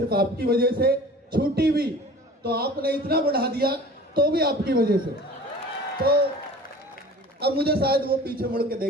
आपकी वजह से, छूटी भी तो आपने इतना बढ़ा दिया तो भी आपकी वजह से। तो अब मुझे शायद वो पीछे मुड़ के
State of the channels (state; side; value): normal; both; correlation 0.42